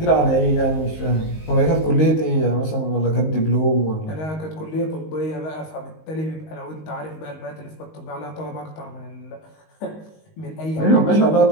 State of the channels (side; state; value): right; late; 19 ms